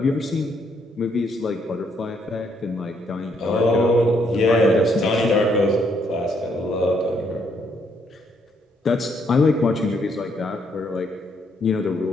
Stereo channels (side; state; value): both; normal; correlation 0.72